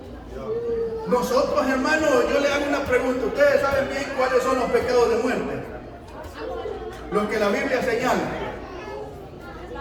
Nosotros, hermanos, yo le hago una pregunta. ¿Ustedes saben bien cuáles son los pecados de muerte? Los que la Biblia señala.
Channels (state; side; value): identical; both; correlation 1.00